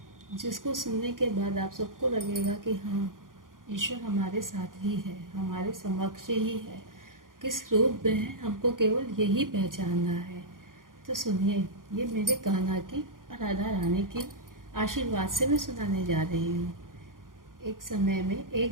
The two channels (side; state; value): left; late; 0.90 ms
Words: जिसको सुनने के बाद आप सबको लगेगा कि हाँ, ईश्वर हमारे साथ ही है, हमारे समक्ष ही है। किस रूप में है हमको केवल यही पहचानना है। तो सुनिए, ये मेरे कान्हा की और राधा रानी की आशीर्वाद से मैं सुनाने जा रही हूँ। एक समय में